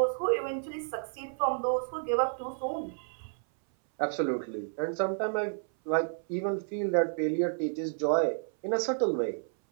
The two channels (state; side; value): silent; left; 57 dB below the other